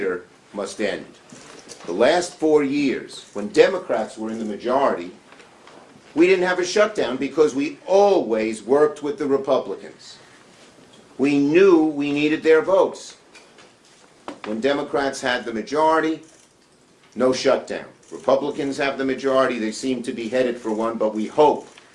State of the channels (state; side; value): identical; both; correlation 1.00